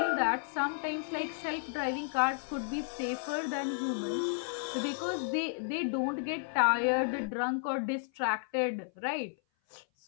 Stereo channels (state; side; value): silent; right; 56 dB below the other